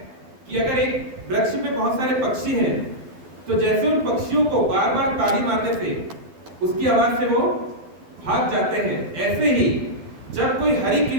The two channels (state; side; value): late; left; 12 ms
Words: कि अगर एक वृक्ष पे बहुत सारे पक्षी हैं, तो जैसे उन पक्षियों को बार बार ताली मारने से उसकी आवाज से वो भाग जाते हैं, ऐसे ही जब कोई हरि